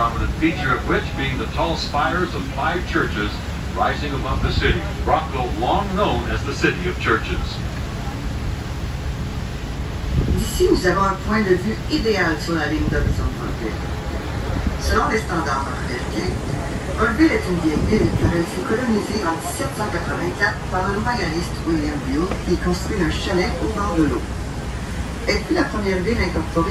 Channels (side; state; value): both; identical; correlation 1.00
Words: feature of which being the tall spires of 5 churches rising above the city. Brockville, long known as the City of Churches. D'ici, nous avons un point de vue idéal sur la ligne d'horizon de Brockville. Selon les standards américains, Brockville est une vieille ville car elle fut colonisée en 1784 par le royaliste William Buell qui construit un chalet au bord de l'eau. Elle fut la première ville